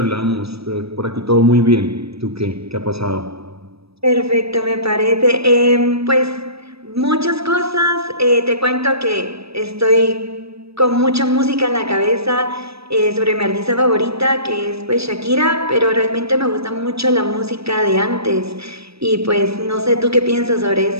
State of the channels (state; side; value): late; left; 0.78 ms